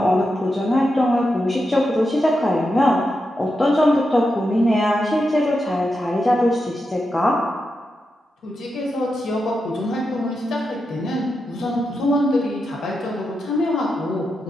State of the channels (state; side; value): normal; both; correlation 0.87